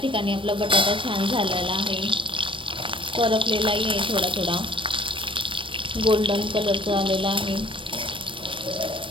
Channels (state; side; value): late; left; 0.25 ms